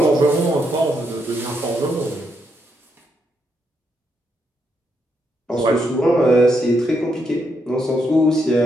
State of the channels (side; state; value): both; normal; correlation 0.79